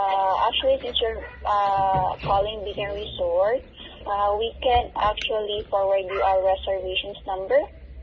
actually, since you're calling Beacon Resort, we can actually forward you our reservations number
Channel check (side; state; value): both; identical; correlation 1.00